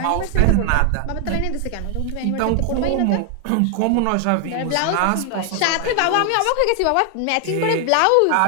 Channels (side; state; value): both; different; correlation 0.00